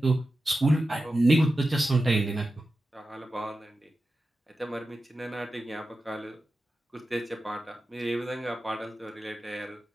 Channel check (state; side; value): normal; both; correlation 0.92